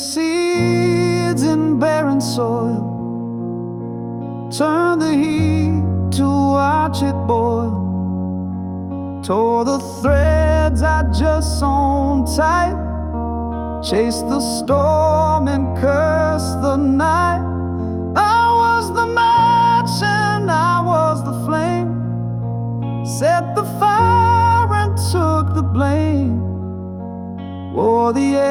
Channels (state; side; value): identical; both; correlation 1.00